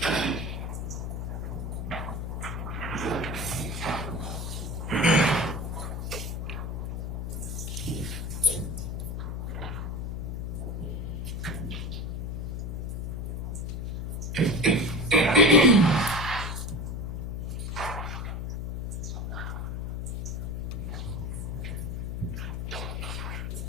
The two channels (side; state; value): left; noise; hum, 3 dB below the sound